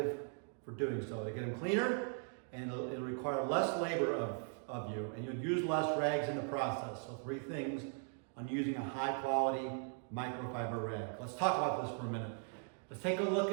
for doing so. They get them cleaner and it'll require less labor of you, and you'll use less rags in the process. So 3 things on using a high quality microfiber rag. Let's talk about this for a minute. Let's take a look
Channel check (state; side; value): silent; left; 52 dB below the other